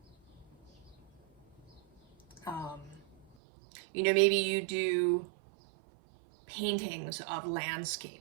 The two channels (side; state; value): left; drops out; at 3.4 s